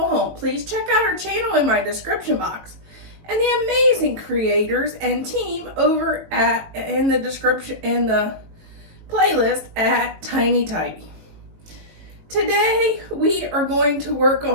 Home. Please check out our channel in my description box, and the amazing creators and team over in the description in the playlist at Tiny Tidy. Today we are going to work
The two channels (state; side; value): late; left; 19 ms